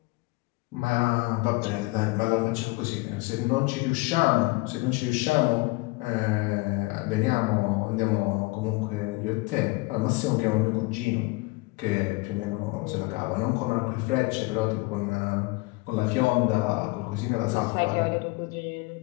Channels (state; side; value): quieter; right; 24.5 dB